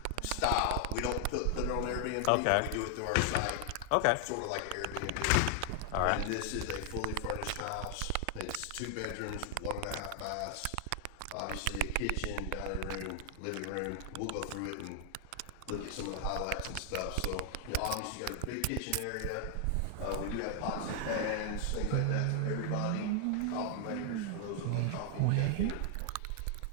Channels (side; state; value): both; different; correlation 0.00